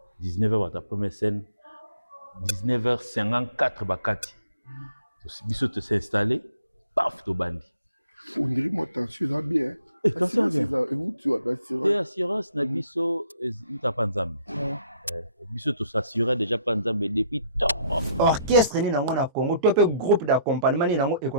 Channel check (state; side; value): inverted; both; correlation -0.63